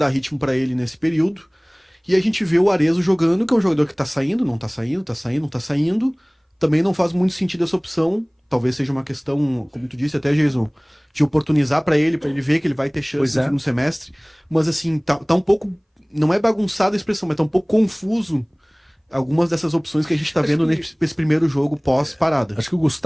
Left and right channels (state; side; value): identical; both; correlation 1.00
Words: ritmo para ele nesse período. E a gente vê o Arezzo jogando, que é um jogador que tá saindo, não tá saindo, tá saindo, não tá saindo. Também não faz muito sentido essa opção. Talvez seja uma questão, como tu disse até, Jason, de oportunizar para ele ver que ele vai ter chance no segundo semestre. Mas assim, tá um pouco... Não é bagunçada a expressão, mas tá um pouco confuso algumas dessas opções que a gente está vendo nesse primeiro jogo pós-parada. Acho que o